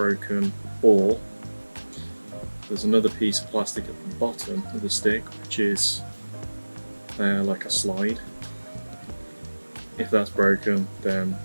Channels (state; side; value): inverted; both; correlation -1.00